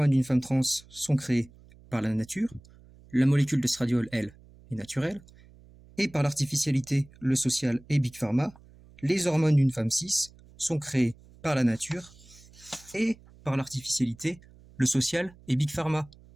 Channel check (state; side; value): noise; right; hum, 24 dB below the sound